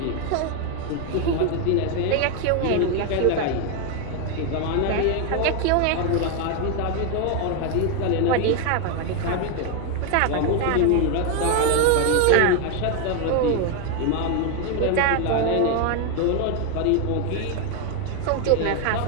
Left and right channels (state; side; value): different; both; correlation 0.01